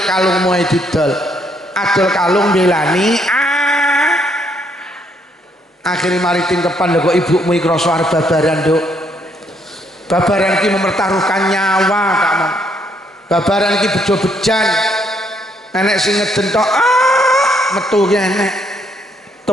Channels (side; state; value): both; normal; correlation 0.71